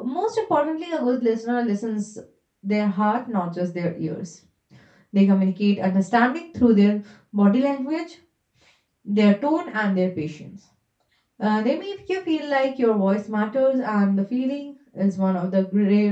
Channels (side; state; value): both; identical; correlation 1.00